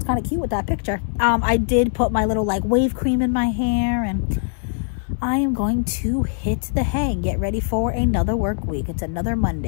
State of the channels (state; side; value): silent; right; 65 dB below the other